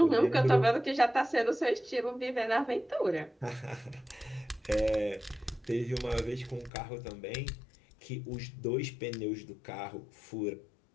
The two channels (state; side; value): drops out; right; at 6.7 s